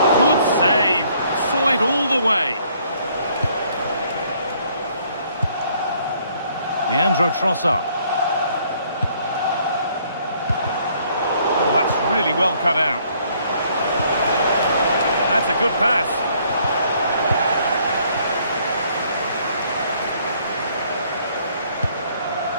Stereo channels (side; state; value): both; inverted; correlation -0.64